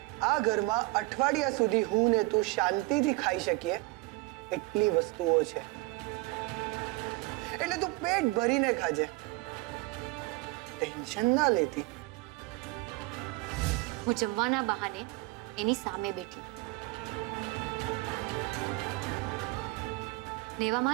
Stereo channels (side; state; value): left; quieter; 23.0 dB